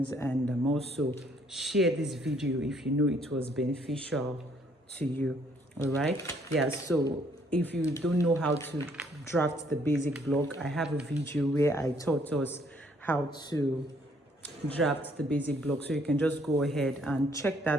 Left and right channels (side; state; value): both; normal; correlation 0.65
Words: and also share this video if you know it was beneficial to you. All right, yeah, so if you don't know how to draft the basic block, I have a video where I taught us how to draft the basic block, so you can just go ahead and check